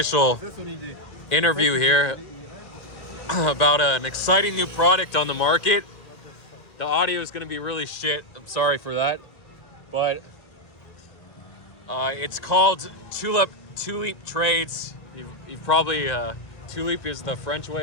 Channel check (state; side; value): late; right; 1.9 ms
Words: interview here about an exciting new product on the market. The audio is gonna be really shit. I'm sorry for that, but it's called Tuleep Trades. You've probably Tuleep is the French way